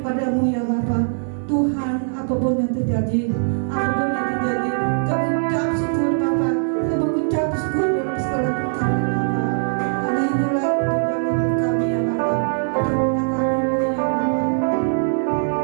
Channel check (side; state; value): left; silent; digital silence